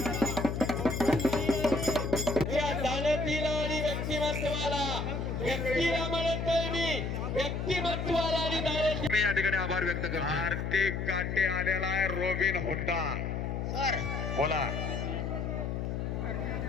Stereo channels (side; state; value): left; noise; hum, 2 dB below the sound